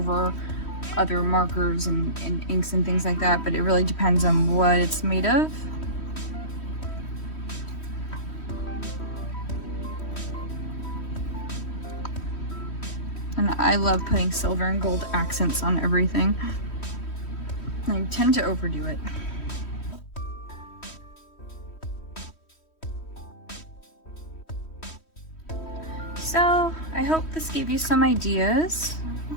other markers and inks and things like that, but it really depends on what it's made of. And I love putting silver and gold accents on everything. I tend to overdo it. So I hope this gave you some ideas.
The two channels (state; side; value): late; right; 3.1 ms